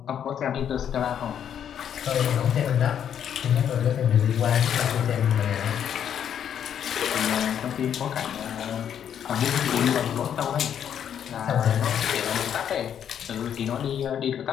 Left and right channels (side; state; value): right; quieter; 9.0 dB